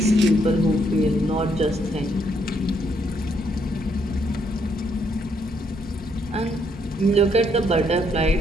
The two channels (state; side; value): normal; both; correlation 0.72